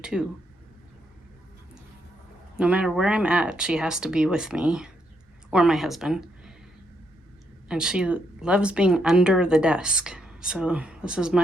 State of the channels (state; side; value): normal; both; correlation 0.78